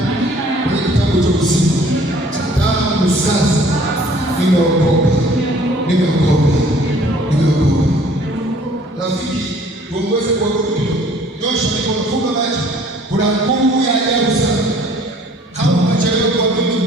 kwenye kitabu cha uzima. Tangu sasa nimeokoka, nimeokoka, nimeokoka. Rafiki, tuongoze kwa Mungu. Nyosha mikono, funga macho. Kuna nguvu ya ajabu sana. Kama unachelewa kuamini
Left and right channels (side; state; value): both; normal; correlation 0.55